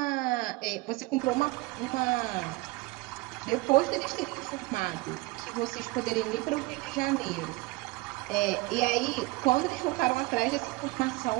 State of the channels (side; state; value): left; quieter; 22.5 dB